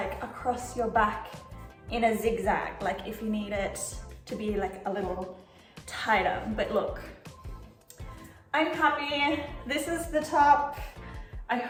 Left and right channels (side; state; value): both; identical; correlation 1.00